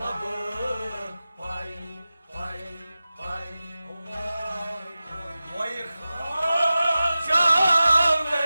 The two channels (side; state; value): both; inverted; correlation -0.95